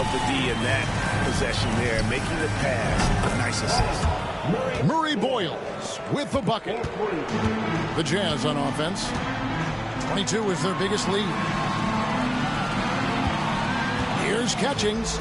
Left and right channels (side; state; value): both; identical; correlation 1.00